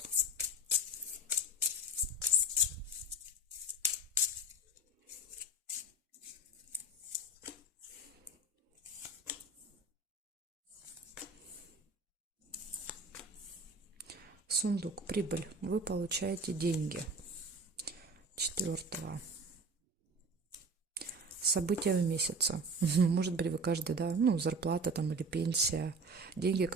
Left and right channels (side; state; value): both; normal; correlation 0.36